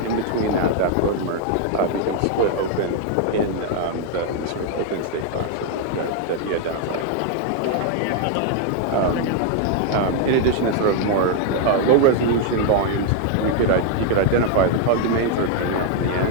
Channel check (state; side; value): different; both; correlation 0.00